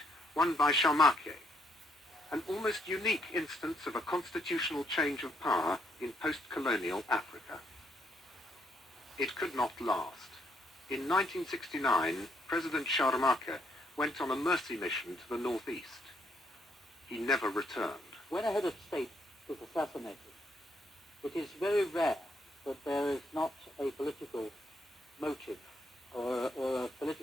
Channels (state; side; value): normal; both; correlation 0.73